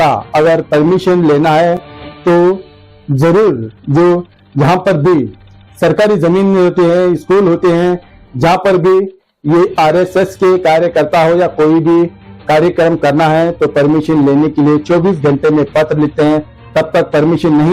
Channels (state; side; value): identical; both; correlation 1.00